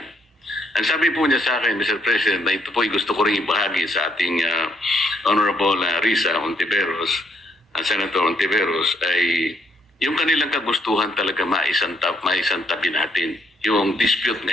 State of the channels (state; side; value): normal; both; correlation 0.71